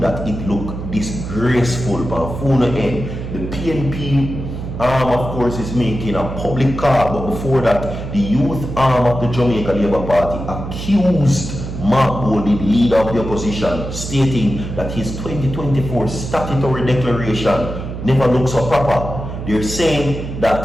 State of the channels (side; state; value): right; noise; hum, 7 dB below the sound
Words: it look disgraceful. But full end, the PNP of course, is making a public call, but before that, the youth arm of the Jamaica Labour Party accused Mark Golding, leader of the opposition, stating that his 2024 statutory declaration never looks so proper. They're saying